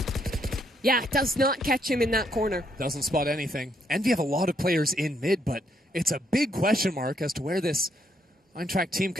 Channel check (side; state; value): both; normal; correlation 0.73